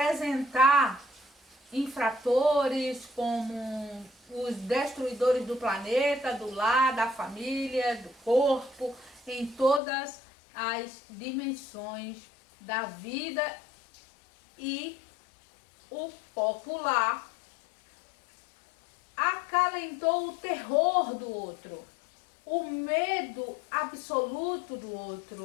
infratores como os destruidores do planeta, do lar, da família, do corpo, em todas as dimensões da vida, e o popular acalentou o terror do outro, o medo absoluto do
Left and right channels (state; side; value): drops out; right; at 9.8 s